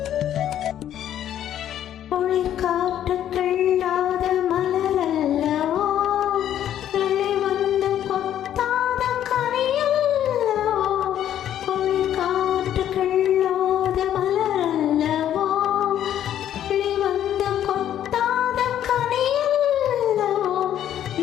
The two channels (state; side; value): quieter; right; 10.9 dB